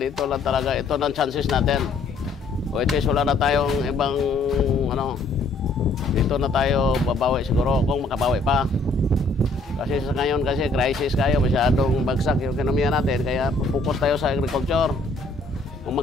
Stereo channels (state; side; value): quieter; right; 3.1 dB